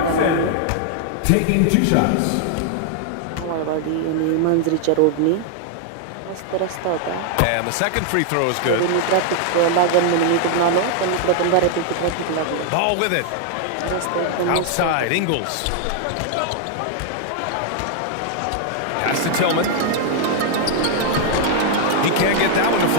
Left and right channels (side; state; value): both; different; correlation 0.00